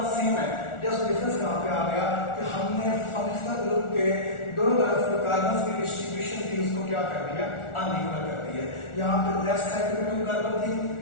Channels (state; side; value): late; right; 1.4 ms